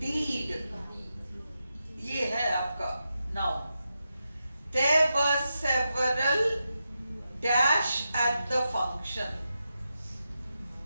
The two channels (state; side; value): inverted; both; correlation -0.88